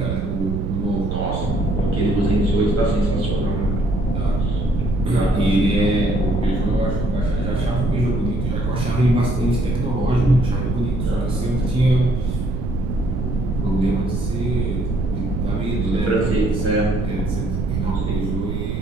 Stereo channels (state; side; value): noise; right; rumble, 2 dB below the sound